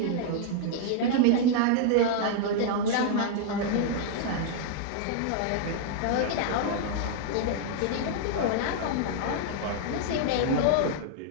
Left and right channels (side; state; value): both; different; correlation -0.01